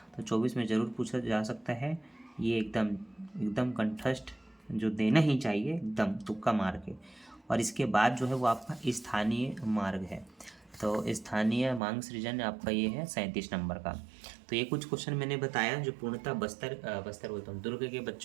तो 24 में ज़रूर पूछा जा सकता है। ये एकदम कंठस्थ जो देना ही चाहिए, एकदम तुक्का मार के। और इसके बाद जो है वो आपका स्थानीय मार्ग है, तो स्थानीय मांग सृजन आपका ये है 37 नंबर का। तो ये कुछ क्वेश्चन मैंने बताया जो पूर्णतः बस्तर बोलता हूँ दुर्ग के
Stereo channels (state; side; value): drops out; left; at 11.8 s